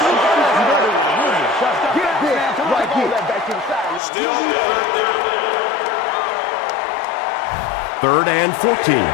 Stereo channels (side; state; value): right; drops out; at 4.0 s